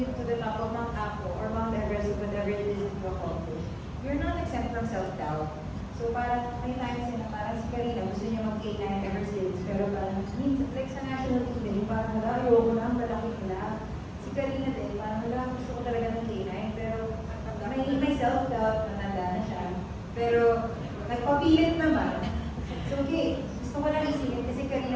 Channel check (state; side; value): identical; both; correlation 1.00